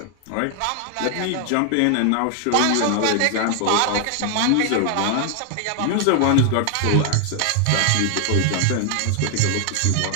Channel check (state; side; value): different; both; correlation 0.00